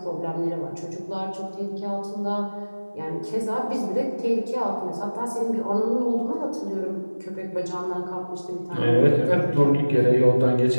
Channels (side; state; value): both; inverted; correlation -1.00